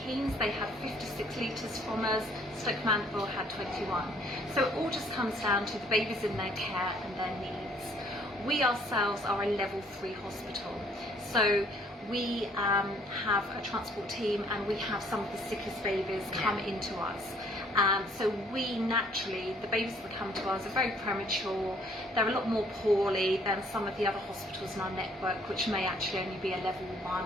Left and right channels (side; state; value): both; normal; correlation 0.61